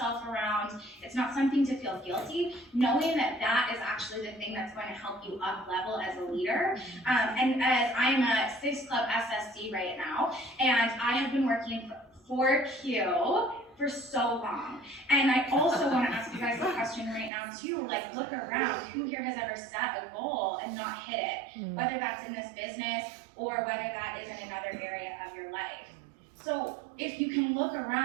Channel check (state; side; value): drops out; left; at 17.3 s